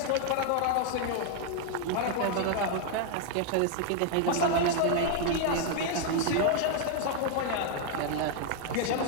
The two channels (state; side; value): different; both; correlation 0.00